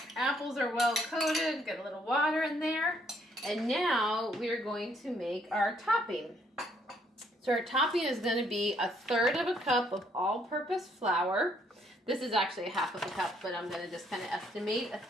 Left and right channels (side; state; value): both; normal; correlation 0.68